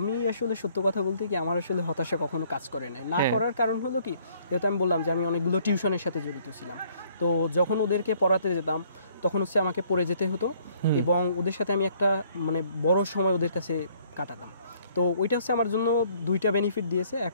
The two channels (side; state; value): both; inverted; correlation -0.63